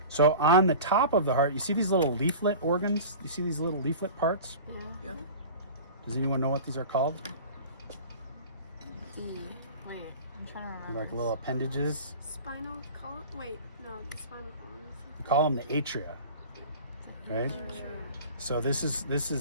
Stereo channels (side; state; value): both; inverted; correlation -0.37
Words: So on the top of the heart, you see these little leaflet organs? You see these little leaflet parts? Yeah. Does anyone know what these are called? Wait, I'm trying to remember. Like little appendages. Spinal column? Wait, no, the spinal column. We call them the atria, right? So this is